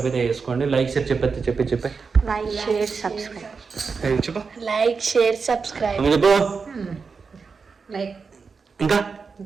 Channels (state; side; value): quieter; left; 5.1 dB